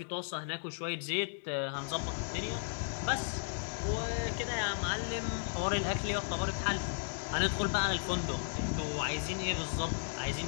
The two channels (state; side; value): silent; right; digital silence